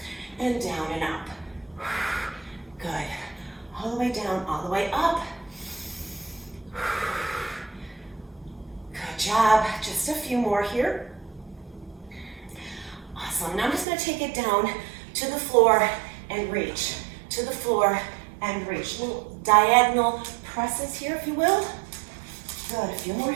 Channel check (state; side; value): drops out; left; at 13.9 s